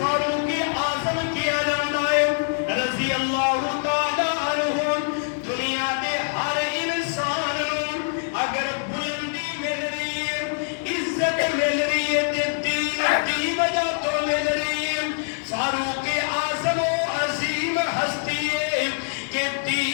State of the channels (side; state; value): right; silent; digital silence